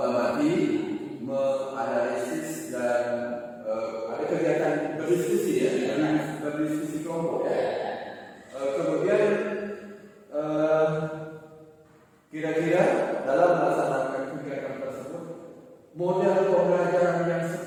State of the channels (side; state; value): both; identical; correlation 1.00